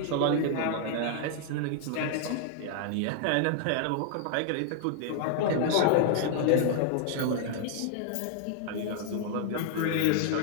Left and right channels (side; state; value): both; different; correlation -0.01